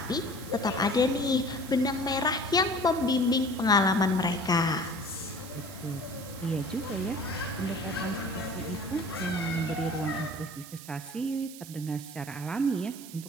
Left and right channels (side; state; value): right; noise; hiss, 15 dB below the sound